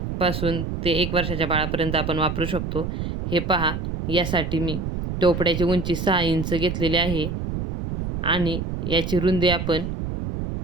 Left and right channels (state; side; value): noise; right; rumble, 4 dB below the sound